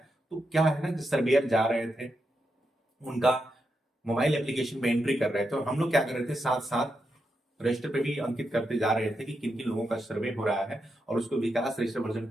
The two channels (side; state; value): both; normal; correlation 0.85